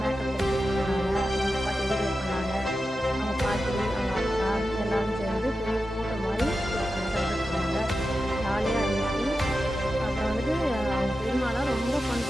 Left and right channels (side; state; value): both; normal; correlation 0.91